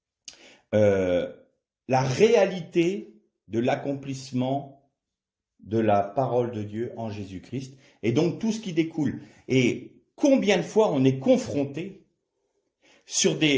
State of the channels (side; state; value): both; identical; correlation 1.00